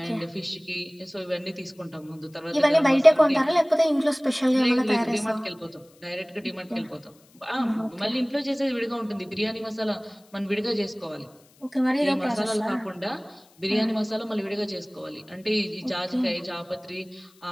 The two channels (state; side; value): noise; left; hiss, 30 dB below the sound